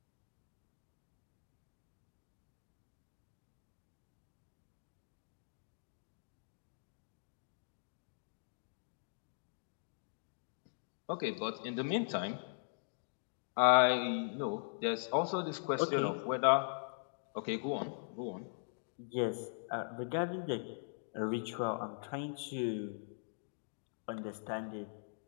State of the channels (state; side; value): silent; right; digital silence